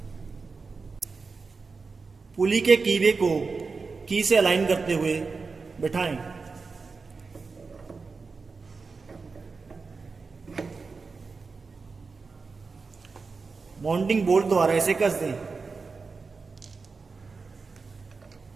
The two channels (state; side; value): quieter; left; 4.5 dB